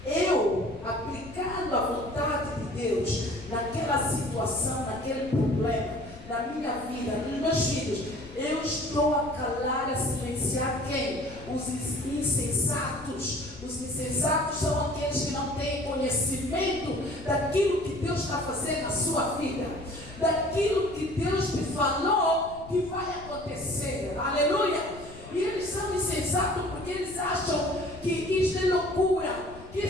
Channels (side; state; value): left; noise; rumble, 17 dB below the sound